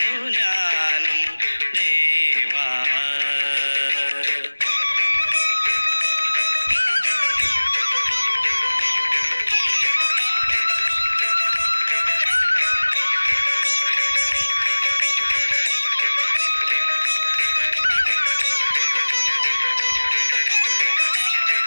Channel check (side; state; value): both; inverted; correlation -1.00